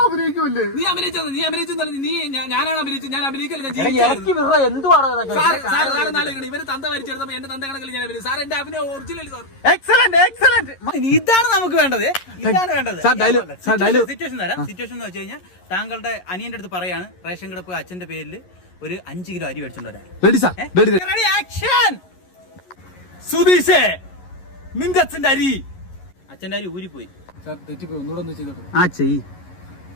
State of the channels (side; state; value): right; late; 11 ms